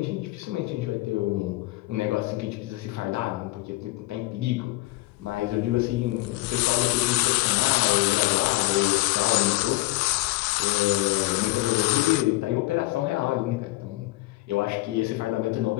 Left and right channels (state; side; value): quieter; right; 20.8 dB